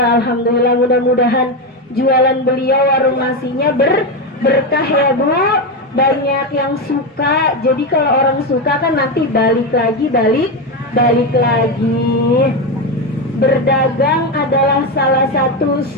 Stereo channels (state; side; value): normal; both; correlation 0.12